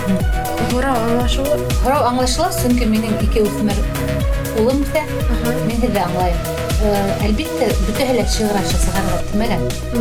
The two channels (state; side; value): identical; both; correlation 1.00